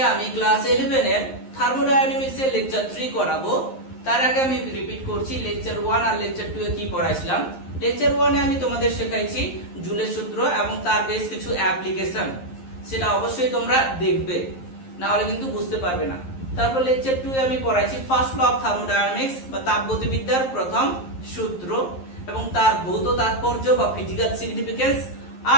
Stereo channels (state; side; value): late; right; 11 ms